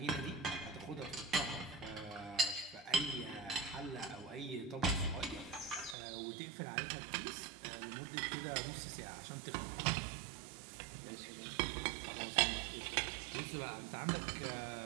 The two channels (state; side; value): drops out; left; at 6.0 s